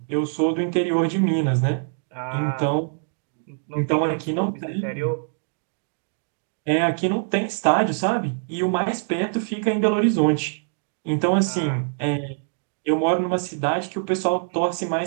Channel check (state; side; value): silent; left; digital silence